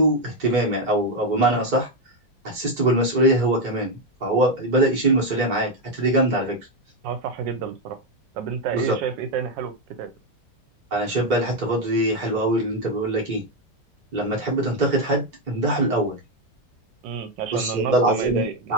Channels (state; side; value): normal; both; correlation 0.06